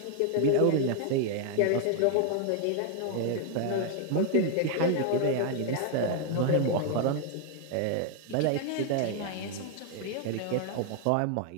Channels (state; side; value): different; both; correlation 0.00